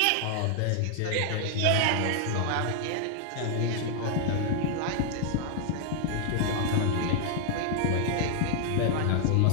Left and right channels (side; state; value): both; different; correlation 0.00